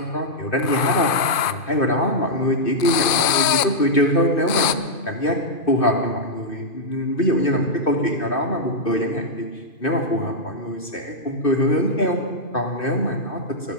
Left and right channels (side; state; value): right; late; 2.5 ms